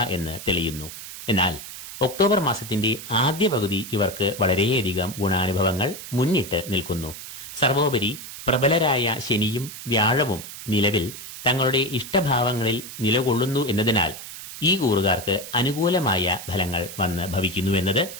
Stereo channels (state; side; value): noise; right; hiss, 12 dB below the sound